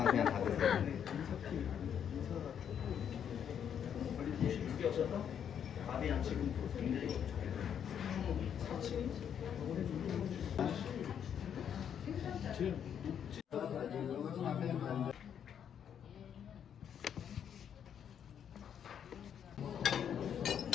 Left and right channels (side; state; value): right; quieter; 8.6 dB